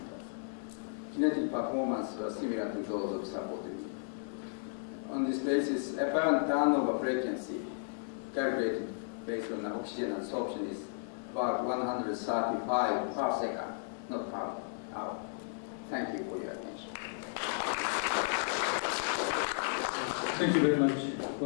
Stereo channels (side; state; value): right; silent; digital silence